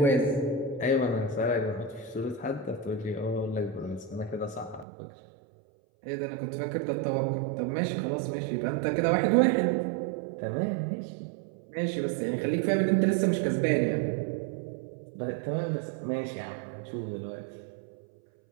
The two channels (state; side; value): drops out; left; at 4.9 s